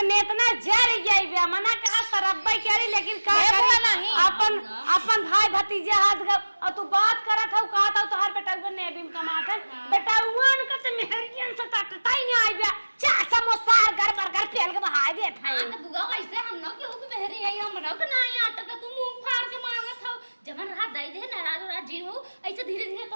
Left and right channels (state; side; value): inverted; both; correlation -1.00